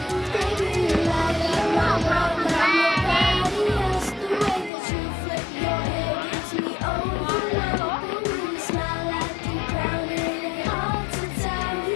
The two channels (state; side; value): drops out; right; at 4.7 s